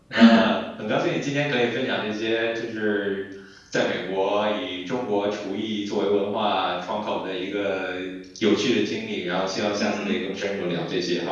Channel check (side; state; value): both; identical; correlation 1.00